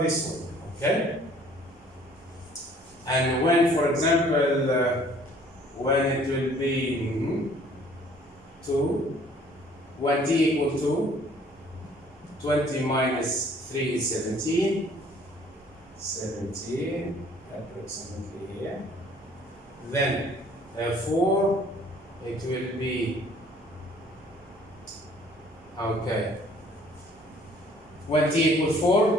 this one, okay? And when, for example, when it will be 2, when t equal 2, 20 minus 3 is 17, 17 approximately here. Then 4, it will be, okay. When t equals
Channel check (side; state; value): both; normal; correlation 0.56